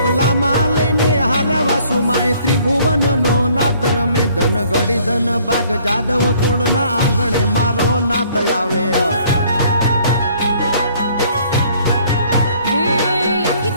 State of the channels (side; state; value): both; inverted; correlation -0.60